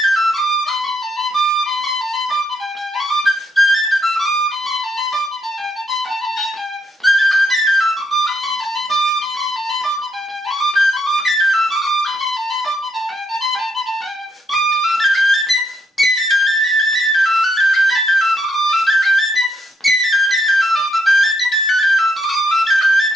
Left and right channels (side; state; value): both; normal; correlation 0.76